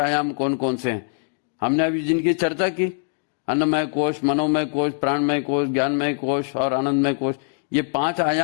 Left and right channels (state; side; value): silent; right; digital silence